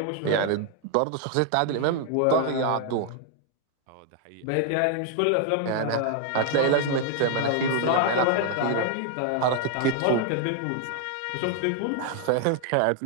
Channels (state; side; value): different; both; correlation 0.00